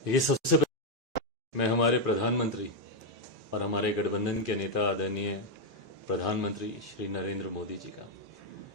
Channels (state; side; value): normal; both; correlation 0.02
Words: ये सबसे पहले मैं हमारे प्रधानमंत्री और हमारे गठबंधन के नेता आदरणीय प्रधानमंत्री श्री नरेंद्र मोदी जी का